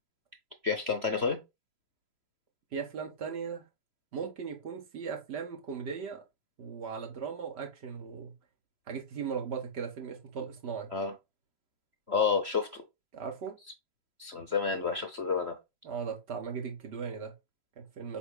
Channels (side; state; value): left; late; 3.0 ms